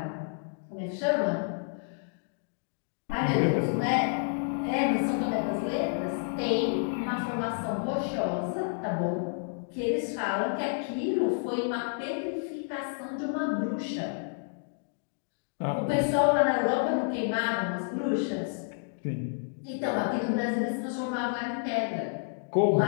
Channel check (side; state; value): right; silent; digital silence